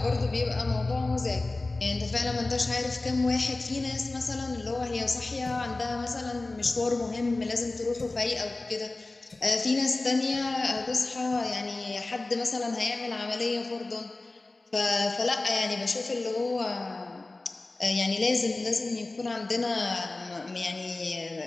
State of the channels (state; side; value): quieter; right; 3.1 dB